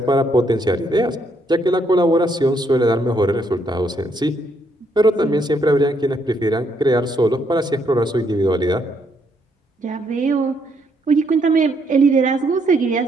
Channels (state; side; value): normal; both; correlation 0.73